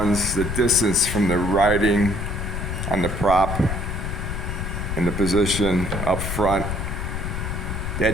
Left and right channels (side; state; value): left; noise; rumble, 3 dB below the sound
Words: the distance from the riding on the prop and the position up front,